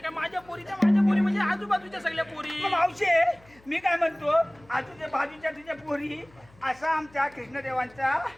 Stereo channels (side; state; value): left; noise; hum, 27 dB below the sound